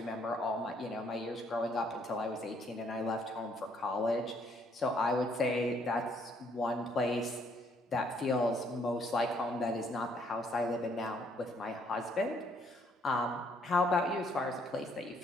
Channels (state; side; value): normal; both; correlation 0.67